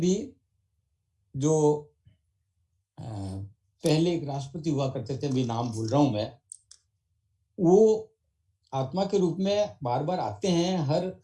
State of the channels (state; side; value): identical; both; correlation 1.00